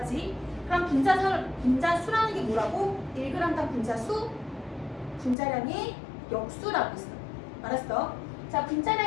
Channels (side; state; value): right; drops out; at 5.4 s